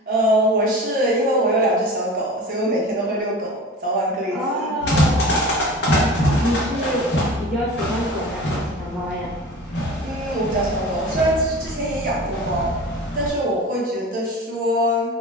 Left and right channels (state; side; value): normal; both; correlation 0.36